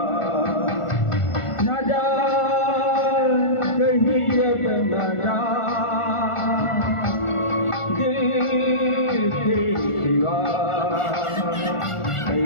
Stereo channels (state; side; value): late; right; 1.4 ms